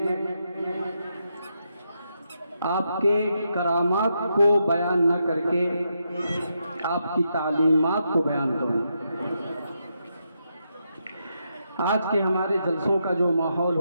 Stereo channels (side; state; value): both; inverted; correlation -0.82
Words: آپ کے کرامات کو بیان نہ کر کے آپ کی تعلیمات کو بیان کروں. آج کے ہمارے جلسوں کا جو ماحول